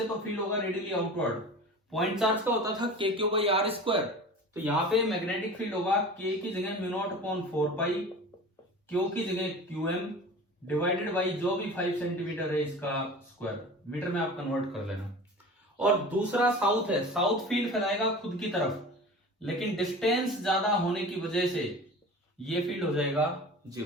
तो फील्ड होगा रेडियली आउटवर्ड। पॉइंट चार्ज का होता था के क्यू बाई आर स्क्वायर, तो यहाँ पे मैग्नेटिक फील्ड होगा के की जगह म्यू नॉट अपॉन 4 पाई, क्यू की जगह क्यू एम डिवाइडेड बाई जो भी 5 सेंटीमीटर है इसका स्क्वायर, मीटर में आप कन्वर्ट कर लेना। और दूसरा साउथ है, साउथ फील्ड फैलाएगा खुद की तरफ, लेकिन डिस्टेंस ज्यादा होने की वजह से ये फील्ड हो जाएगा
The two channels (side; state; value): both; normal; correlation 0.37